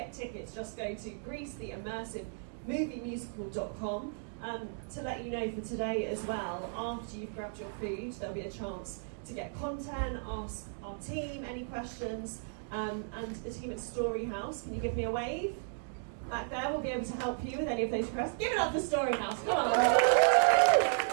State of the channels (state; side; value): silent; left; digital silence